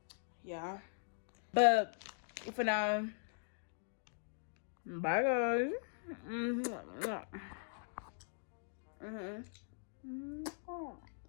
Yeah, but for now, bye guys.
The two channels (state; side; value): silent; right; digital silence